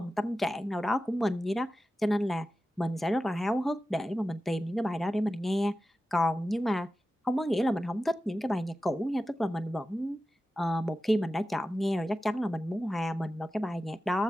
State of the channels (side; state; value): both; normal; correlation 0.94